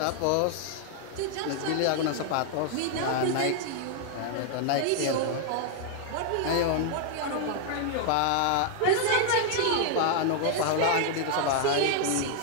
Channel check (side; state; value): both; different; correlation 0.00